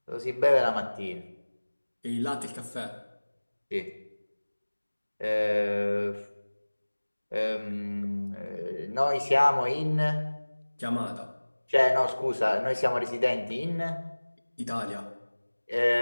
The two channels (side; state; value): both; inverted; correlation -1.00